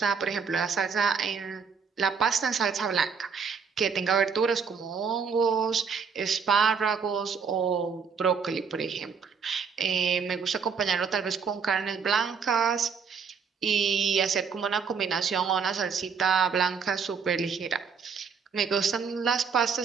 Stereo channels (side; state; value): left; quieter; 6.0 dB